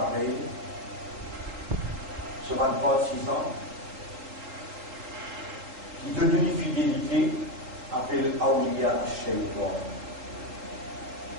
sur 26 ans, qui donne une fidélité, appelle Awliya Shaitan.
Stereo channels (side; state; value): left; late; 3.9 ms